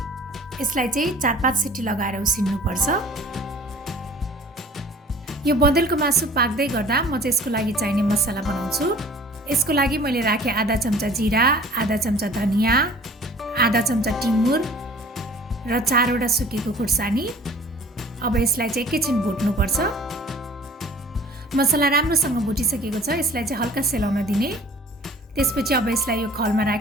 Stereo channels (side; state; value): both; normal; correlation 0.49